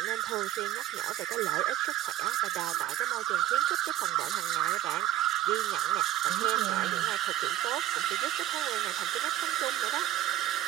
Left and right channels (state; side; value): quieter; left; 13.6 dB